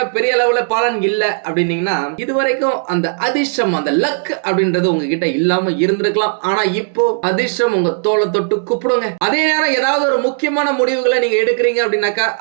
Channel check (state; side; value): silent; left; digital silence